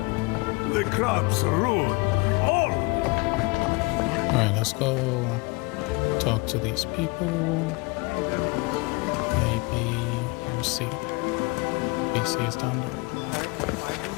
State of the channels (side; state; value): right; quieter; 27.0 dB